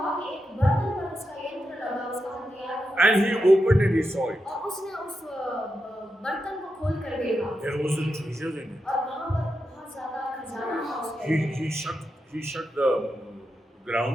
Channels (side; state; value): both; normal; correlation 0.87